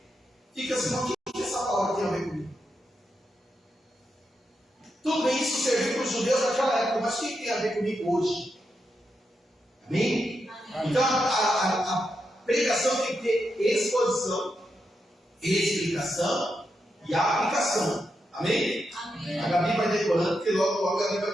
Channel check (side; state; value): both; normal; correlation 0.85